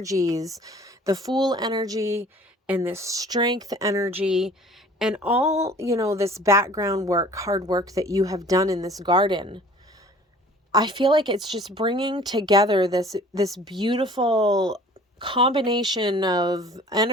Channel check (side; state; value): both; normal; correlation 0.49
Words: the Fool energy and this Strength energy, and all, this background work, hard work that you have done in this garden. I feel like it's just bringing together this beautiful combination of